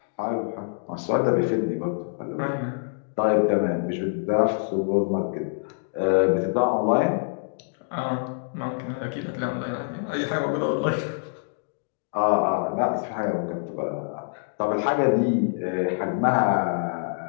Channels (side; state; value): right; silent; digital silence